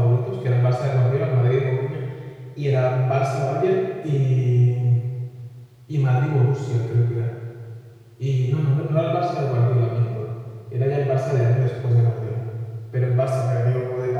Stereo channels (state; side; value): identical; both; correlation 1.00